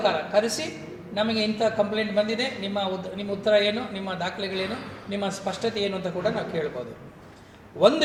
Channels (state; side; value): identical; both; correlation 1.00